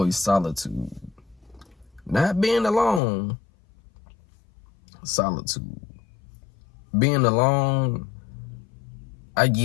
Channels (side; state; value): right; drops out; at 3.0 s